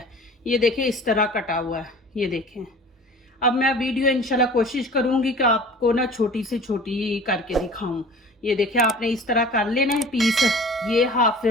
ये देखें इस तरह कटा हुआ है, ये देखें। अब मैं वीडियो इंशाल्लाह कोशिश करूंगी कि आपको ना छोटी से छोटी करके दिखाऊं। ये देखिए, आपने इस तरह कर लेना है पीस। ये हाफ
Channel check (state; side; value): normal; both; correlation 0.43